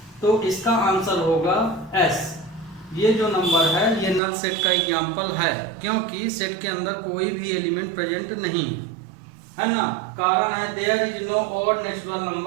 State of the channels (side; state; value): left; drops out; at 4.2 s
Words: तो इसका आंसर होगा एस। ये जो नंबर है ये नल सेट का एग्जाम्पल है, क्योंकि सेट के अंदर कोई भी एलिमेंट प्रेजेंट नहीं है ना। कारण है there is no odd natural